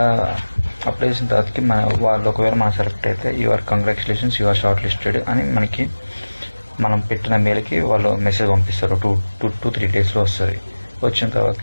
అప్లై చేసిన తర్వాతకి వాళ్ళు ఒకవేళ మనం సెలెక్ట్ అయితే your congratulations your short listed అని మనకి మనం పెట్టిన మెయిల్కి వాళ్ళు మెసేజ్ పంపిస్తారు. 2-3 డేస్లో వస్తుంది. వచ్చిన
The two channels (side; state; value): both; inverted; correlation -1.00